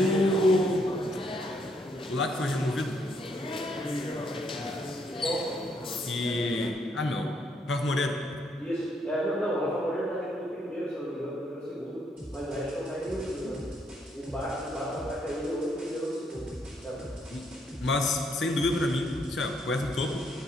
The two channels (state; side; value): normal; both; correlation 0.72